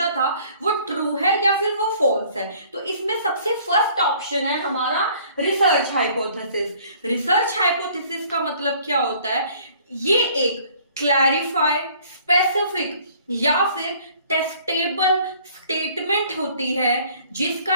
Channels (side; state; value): both; inverted; correlation -0.56